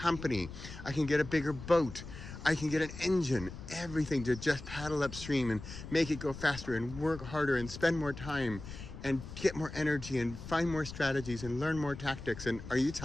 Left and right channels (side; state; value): left; noise; rumble, 12 dB below the sound